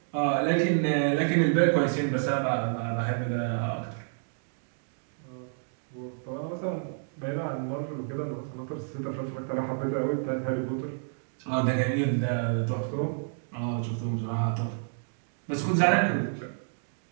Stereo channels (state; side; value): silent; left; digital silence